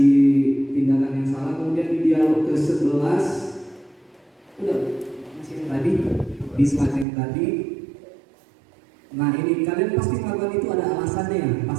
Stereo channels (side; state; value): left; drops out; at 7.1 s